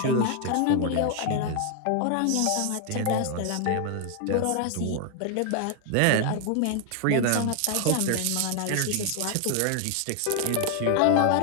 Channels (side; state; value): both; different; correlation 0.00